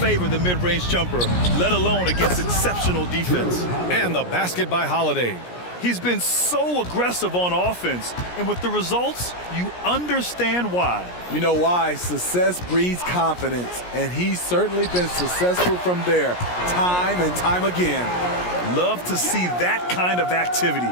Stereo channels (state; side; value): late; right; 17 ms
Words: the mid-range jumper, let alone against exceptional defense. And the basket by Holiday. He's been so aggressive on offense, and with the results, you understand why. You know why? Success breeds confidence, and he's certainly been successful from there, time and time again. Love to see that kind of activity.